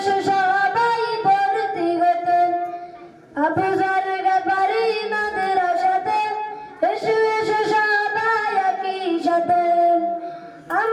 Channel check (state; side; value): identical; both; correlation 1.00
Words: সবাই ভর্তি হতে। আবু যর গফারি মাদ্রাসাতে এসো এসো সবাই একই সাথে।